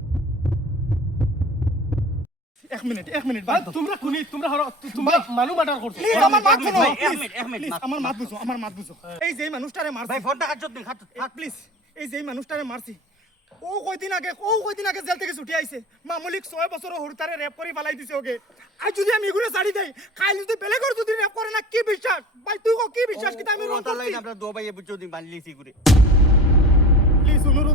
এক মিনিট ভাই তোমরা খুনি তোমরা তোমরা মানু মার্ডার করছো আমার মাত শুনো এক মিনিট আমার মাত বুঝো এই যে মানুষটারে মারছি ভাই ফোনটা কাট দিন হাত প্লিজ এই যে মানুষটারে মারছি ও কয়দিন আগে জেল থেকে ছুটি আইছে মামুলিক 6 বছর হরতারে রেপ করে ফালাই দিছে ওকে আর যদি আমি এগুলো ছাড়ি দেই কাল যদি বেলেগর যদি রেপ করে না কি বিশ্বাস ভাই তুই কি বিশ্বাস কি আমি রং করছি আমরা দো ভাই বুঝছো দিন বানলিছি করে প্লিজ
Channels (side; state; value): both; normal; correlation 0.37